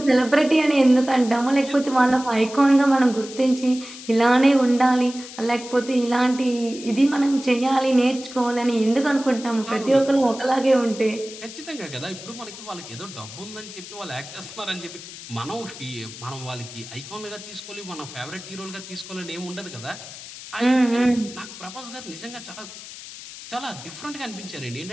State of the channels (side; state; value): left; noise; hiss, 14 dB below the sound